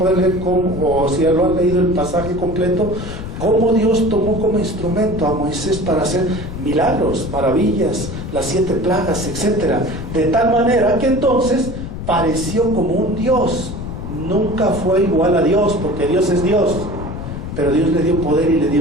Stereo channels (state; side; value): noise; left; rumble, 8 dB below the sound